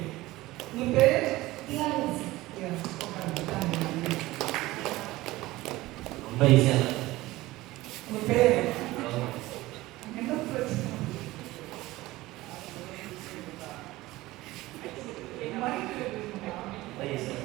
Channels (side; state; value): left; quieter; 18.4 dB